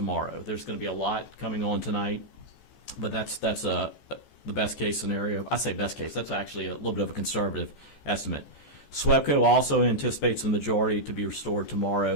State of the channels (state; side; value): late; right; 14 ms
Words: There's going to be a lot coming on tonight, but that's the best case scenario. I say best case. That's actually a little bit of a conservative estimate. SWEPCO also anticipates the majority to be restored